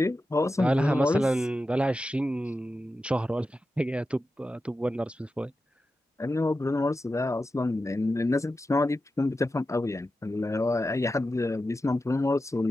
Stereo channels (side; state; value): both; normal; correlation 0.91